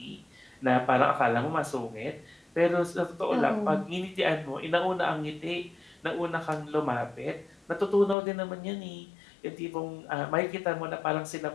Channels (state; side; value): drops out; right; at 8.2 s